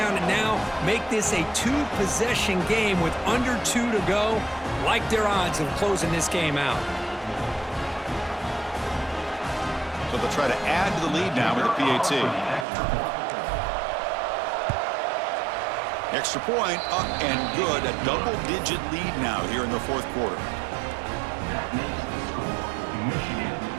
and now make this a two-possession game with under 2 to go. Like their odds of closing this game out. So they'll try to add to the lead now with the PAT. Extra point, up and good. A double-digit lead now here in the fourth quarter. That makes the score Michigan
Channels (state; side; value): drops out; left; at 12.7 s